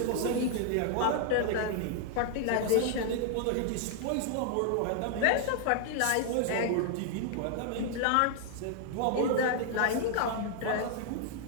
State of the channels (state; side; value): different; both; correlation 0.00